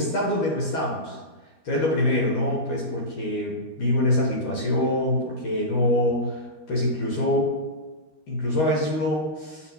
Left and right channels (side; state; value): right; late; 13 ms